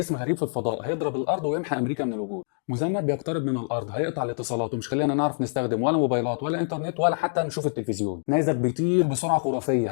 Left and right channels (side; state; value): right; silent; digital silence